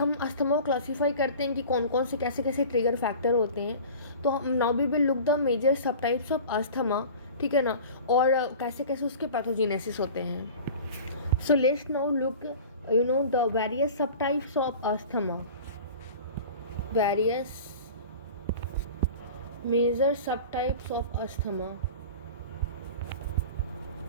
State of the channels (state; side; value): inverted; both; correlation -0.39